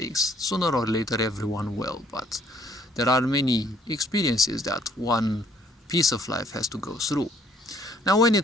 sooner or later everyone will, but there are many experiences that one piece of life has to go through. Now, when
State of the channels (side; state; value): both; normal; correlation 0.63